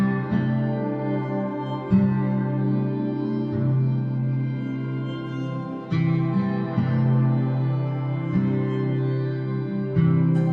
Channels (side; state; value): both; identical; correlation 1.00